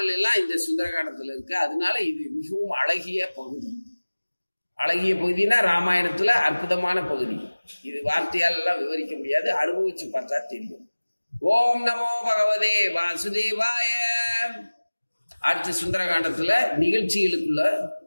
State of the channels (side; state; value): both; inverted; correlation -1.00